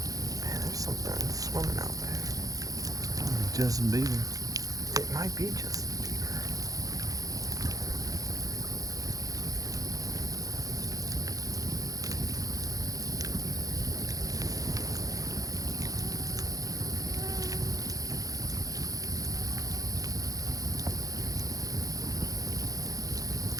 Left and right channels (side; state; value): left; late; 0.17 ms